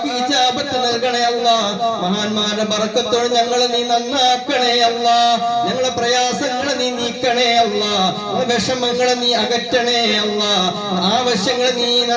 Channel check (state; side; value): identical; both; correlation 1.00